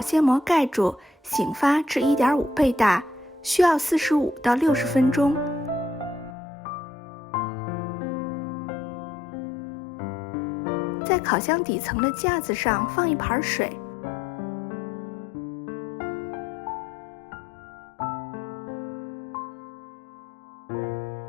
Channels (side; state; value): right; drops out; at 6.4 s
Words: 膜盖住，醒发至1.5倍大，需要45到60分钟。在烤箱底层的架子上放一盘水，